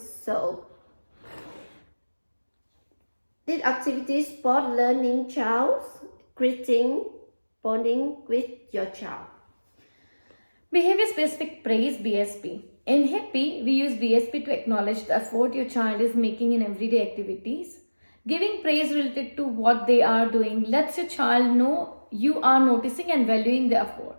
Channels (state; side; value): inverted; both; correlation -1.00